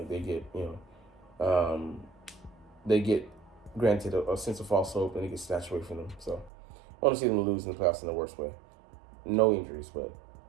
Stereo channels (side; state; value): left; drops out; at 6.5 s